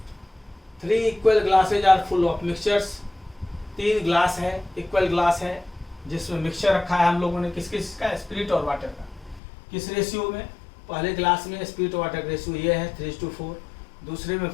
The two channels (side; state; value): right; drops out; at 9.4 s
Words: 3 equal glasses are full of mixtures, 3 glass है, इक्वल ग्लास है जिसमें मिक्सचर रखा है हम लोगों ने, किस किस का, स्पिरिट और वाटर का। किस रेशियो में? पहले ग्लास में स्पिरिट और वाटर का रेशियो ये है 3:4, दूसरे में